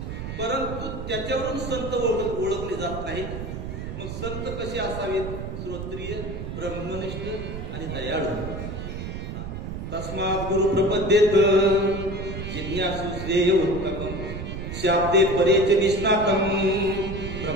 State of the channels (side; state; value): right; noise; rumble, 7 dB below the sound